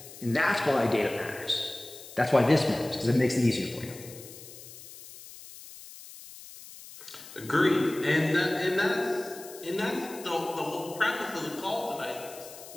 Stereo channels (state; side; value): noise; left; hiss, 16 dB below the sound